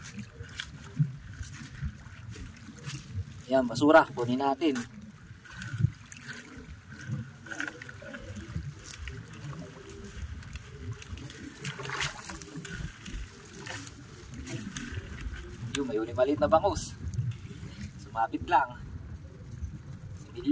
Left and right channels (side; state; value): both; identical; correlation 1.00